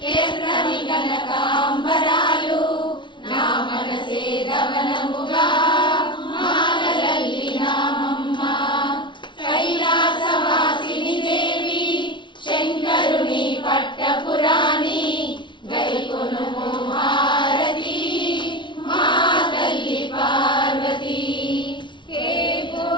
ఎర్రని కనకాంబరాలు, నా మనసే ధవనముగా మాలనల్లినామమ్మ. కైలాసవాసిని దేవి శంకరుని పట్టపురాణి, గైకొనుము హారతి మా తల్లి పార్వతి. ఏ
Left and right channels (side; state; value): right; late; 0.23 ms